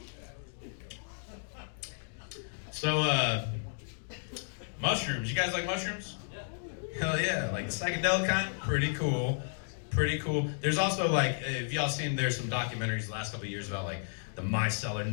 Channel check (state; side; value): silent; right; digital silence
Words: So, mushrooms. You guys like mushrooms? Hell yeah. Like the psychedelic kind? Pretty cool. There's also if y'all seen, there's some documentaries the last couple of years about the micellar